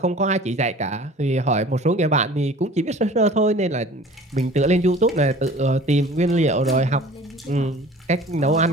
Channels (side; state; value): both; normal; correlation 0.46